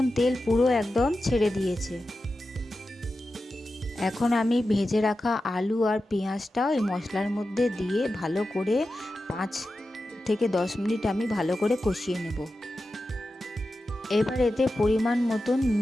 তেল পুরো একদম ছেড়ে দিয়েছে। এখন আমি ভেজে রাখা আলু আর পেঁয়াজটা ওই মশলার মধ্যে দিয়ে ভালো করে 5 থেকে 10 মিনিট আমি ভালো করে কষিয়ে নেব। এবার এতে পরিমাণ মতন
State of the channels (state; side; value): normal; both; correlation 0.92